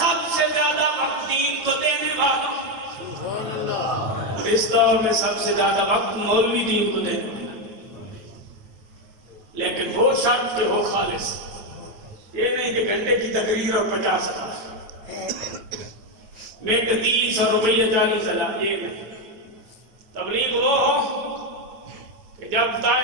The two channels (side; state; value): left; late; 9.3 ms